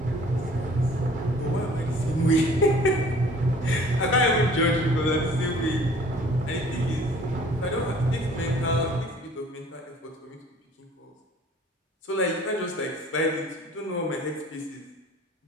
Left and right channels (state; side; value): normal; both; correlation 0.52